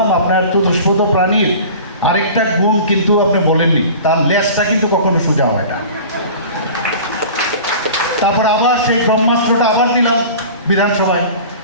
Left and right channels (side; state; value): both; inverted; correlation -0.40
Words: আপনার চতুষ্পদ প্রাণীর আরেকটা গুণ কিন্তু আপনি বলেননি, তার লেজটা কিন্তু কখনো সোজা হয় না। তারপর আবার সেই ব্রহ্মাস্ত্রটা আবার দিলাম বিধানসভায়,